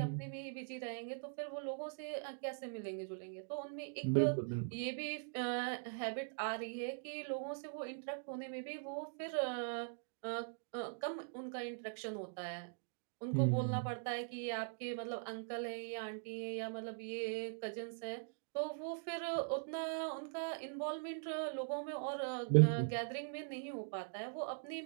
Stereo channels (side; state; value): left; silent; digital silence